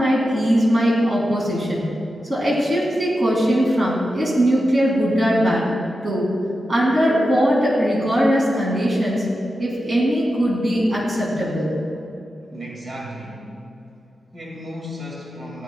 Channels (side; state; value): both; normal; correlation 0.90